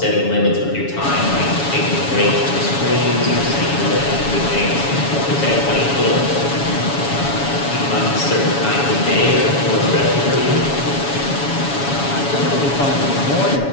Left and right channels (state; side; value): late; right; 7.1 ms